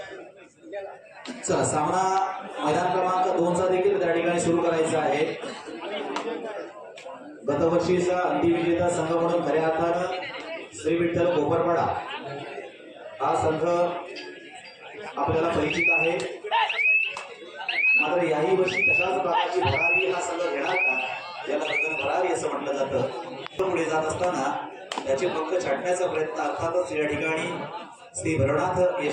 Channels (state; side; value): identical; both; correlation 1.00